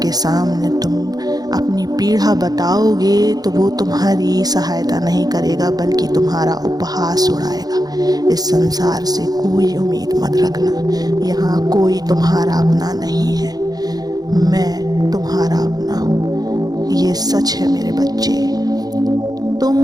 सामने तुम अपनी पीड़ा बताओगे तो वो तुम्हारी सहायता नहीं करेगा, बल्कि तुम्हारा उपहास उड़ाएगा। इस संसार से कोई उम्मीद मत रखना, यहाँ कोई तुम्हारा अपना नहीं है, मैं तुम्हारा अपना हूँ। ये सच है मेरे बच्चे।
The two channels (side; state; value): left; late; 0.19 ms